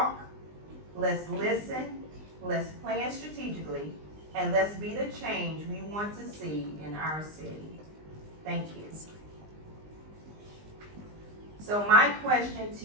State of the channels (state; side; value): late; left; 20 ms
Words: let's listen, let's plan strategically, and let's be the change we want to see in our city. Thank you. So my question to